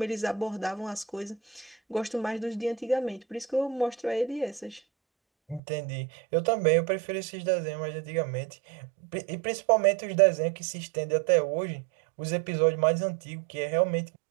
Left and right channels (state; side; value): drops out; left; at 5.6 s